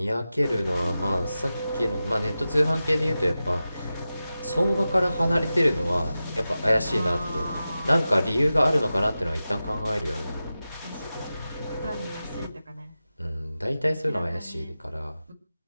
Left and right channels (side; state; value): both; inverted; correlation -0.93